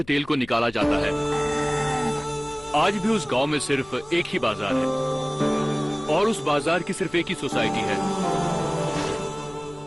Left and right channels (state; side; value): noise; left; hum, 23 dB below the sound